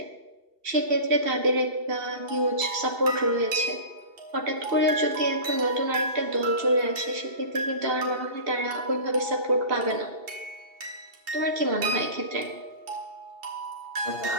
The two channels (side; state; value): left; late; 2.7 ms